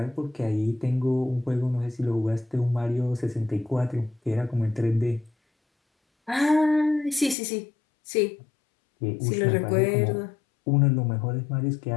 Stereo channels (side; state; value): right; drops out; at 7.4 s